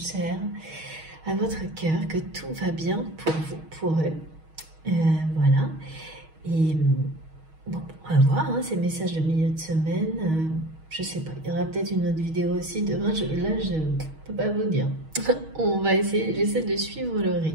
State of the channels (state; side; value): late; left; 6.3 ms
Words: à votre cœur, que tout va bien pour vous, pour eux. Voilà. Et bon, on va voir ces messages de milieu de semaine. Je sais pas, il y aura peut-être une autre vidéo aussi demain. Là, je ne peux pas vous dire. On va essayer, j'essaie de suivre le